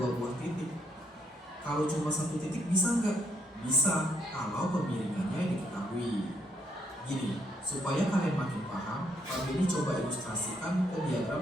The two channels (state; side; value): normal; both; correlation 0.72